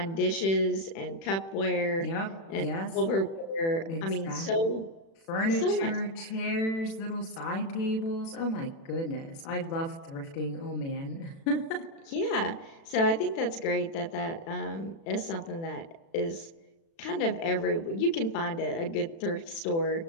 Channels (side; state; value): right; late; 36 ms